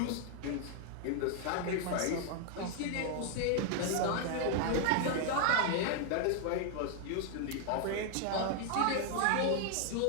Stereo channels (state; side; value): different; both; correlation 0.00